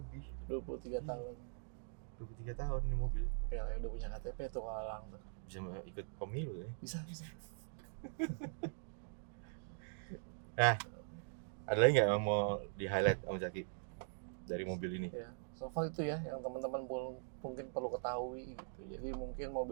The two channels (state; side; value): silent; left; digital silence